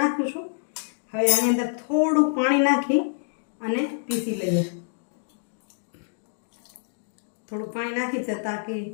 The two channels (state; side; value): silent; right; digital silence